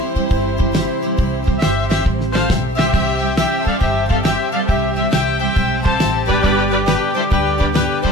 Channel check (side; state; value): both; normal; correlation 0.49